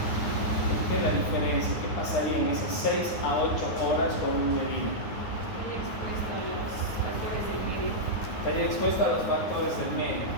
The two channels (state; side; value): late; right; 9.6 ms